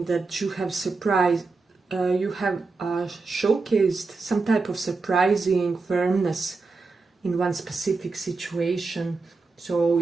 that you have surprised, you have showcased some type of surprising firmness in one specific situation. So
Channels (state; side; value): quieter; left; 4.0 dB